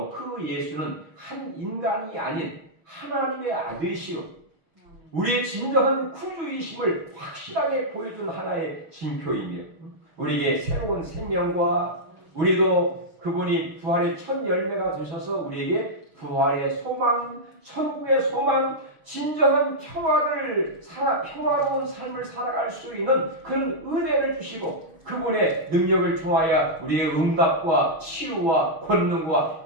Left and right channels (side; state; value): left; late; 6.5 ms